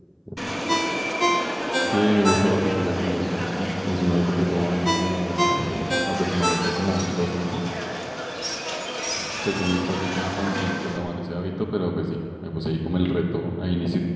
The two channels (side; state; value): both; identical; correlation 1.00